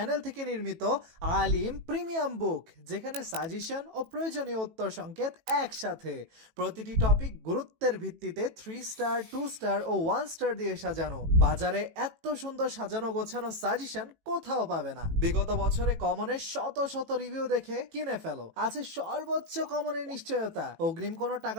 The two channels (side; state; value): left; late; 18 ms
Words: থেকে নির্মিত আলিম প্রিমিয়াম বুক, যেখানে সাজেশন ও প্রয়োজনীয় উত্তর সংকেত একসাথে। প্রতিটি টপিক গুরুত্বের ভিত্তিতে 3 স্টার, 2 স্টার ও 1 স্টার দিয়ে সাজানো। বাজারে এত সুন্দর সাজানো গোছানো সাজেশন কোথাও পাবে না। বিগত বছরে কমনের শত শত রিভিউ দেখে কিনে ফেলো। আছে সর্বোচ্চ কমনের নিশ্চয়তা। অগ্রিম কোনো